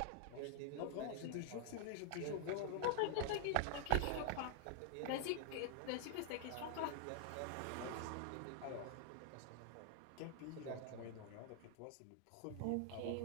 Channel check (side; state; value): both; different; correlation 0.00